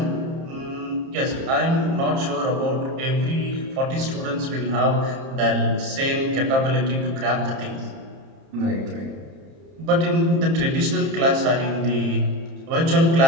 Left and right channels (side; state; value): left; late; 30 ms